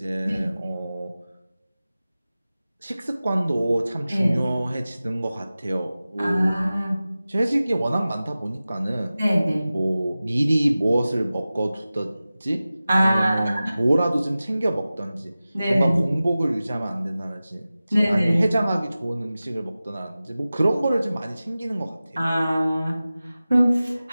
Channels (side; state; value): both; inverted; correlation -0.96